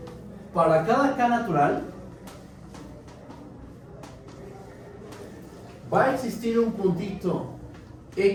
Para cada K natural, va a existir un puntito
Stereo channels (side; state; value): both; identical; correlation 1.00